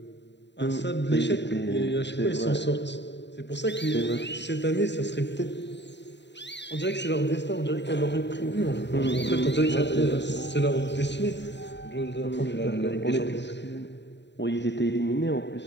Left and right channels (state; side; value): late; right; 0.51 ms